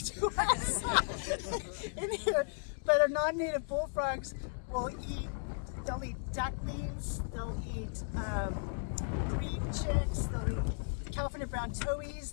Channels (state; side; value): silent; right; digital silence